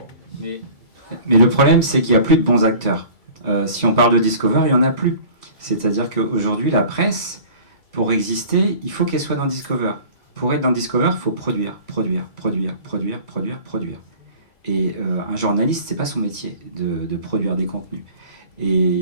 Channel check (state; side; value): late; right; 2.3 ms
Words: Mais le problème, c'est qu'il n'y a plus de bons acteurs. Si on parle de Discover, il n'y en a plus. C'est-à-dire qu'aujourd'hui, la presse, pour exister, il faut qu'elle soit dans Discover. Pour être dans Discover, il faut produire. Et un journaliste, c'est pas son métier de produire des contenus.